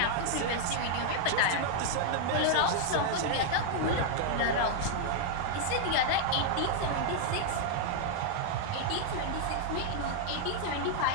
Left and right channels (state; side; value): different; both; correlation 0.00